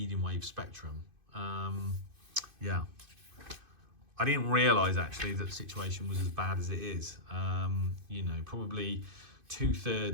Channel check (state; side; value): late; left; 2.5 ms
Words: wave spectrum. Yeah, I didn't realise actually that the situation was as bad as it is. You know, probably